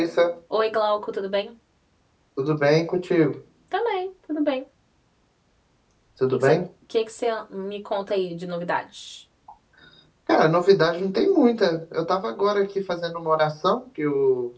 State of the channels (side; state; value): both; identical; correlation 1.00